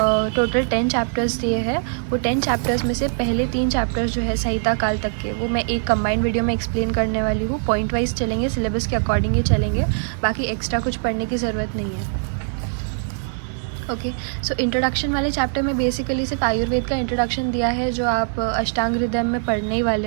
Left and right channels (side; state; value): left; silent; digital silence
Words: टोटल 10 चैप्टर्स दिए हैं। वो 10 चैप्टर्स में से पहले 3 चैप्टर्स जो है संहिता काल तक के, वो मैं एक कंबाइंड वीडियो में एक्सप्लेन करने वाली हूँ। पॉइंट वाइज चलेंगे, सिलेबस के अकॉर्डिंग ही चलेंगे, बाकी एक्स्ट्रा कुछ पढ़ने की ज़रूरत नहीं है। ओके, सो इंट्रोडक्शन वाले चैप्टर में बेसिकली सिर्फ आयुर्वेद का इंट्रोडक्शन दिया है, जो आप अष्टांग हृदय में पढ़ने ही